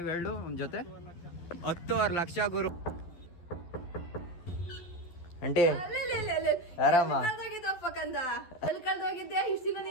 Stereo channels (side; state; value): right; late; 12 ms